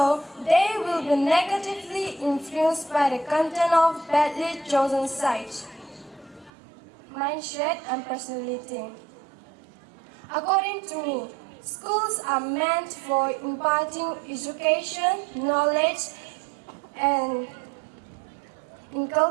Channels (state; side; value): drops out; left; at 6.5 s